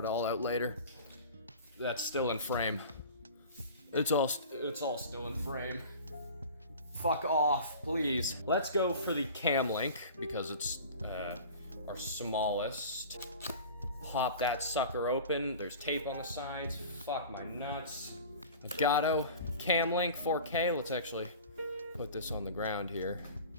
all out later. That's still in frame. It's all still in frame. Fuck off, please. Let's go for the cam link because it's our smallest. Pop that sucker open. There's tape on the sides. Fuck my nuts. Elgato cam link 4K. Let's actually put this on the ground here.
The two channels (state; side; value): inverted; both; correlation -0.39